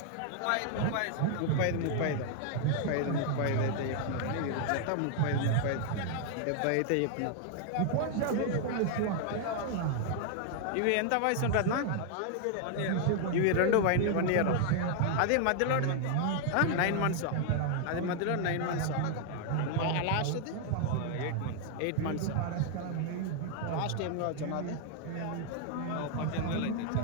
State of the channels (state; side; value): different; both; correlation 0.00